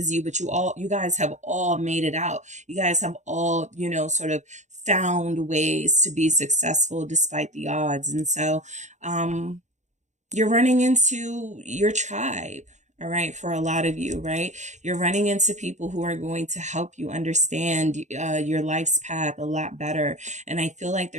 you, but you guys have all made it out. You guys have all, sort of found ways to be successful despite the odds. And so, you're running into your tribe. All right. For a lot of you, right? You're running into people who are going to help you understand your life's path a lot better. And I feel like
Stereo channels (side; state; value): left; late; 0.34 ms